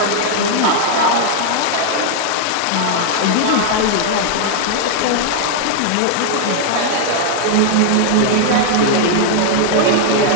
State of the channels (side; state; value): both; different; correlation 0.00